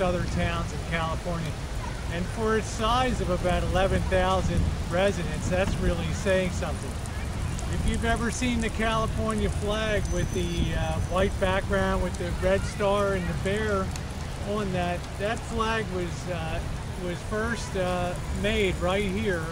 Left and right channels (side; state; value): both; identical; correlation 1.00